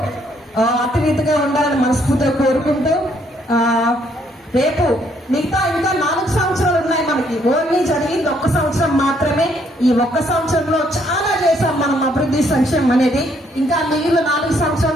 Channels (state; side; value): normal; both; correlation 0.69